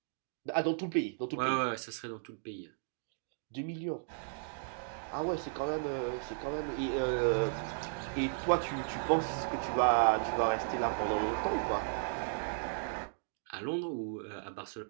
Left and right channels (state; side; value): silent; left; digital silence